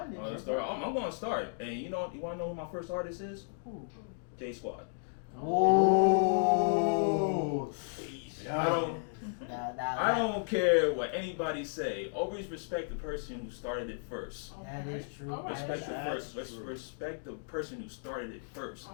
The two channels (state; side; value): silent; right; digital silence